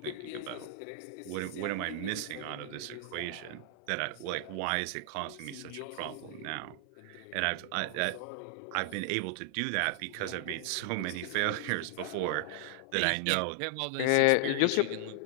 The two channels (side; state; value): both; different; correlation 0.00